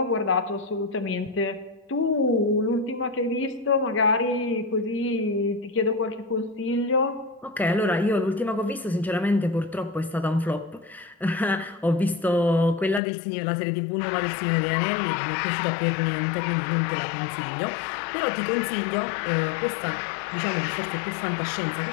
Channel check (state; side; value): drops out; right; at 13.0 s